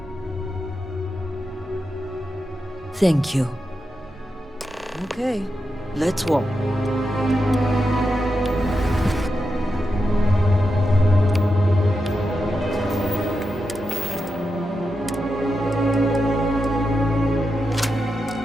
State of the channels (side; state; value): both; normal; correlation 0.88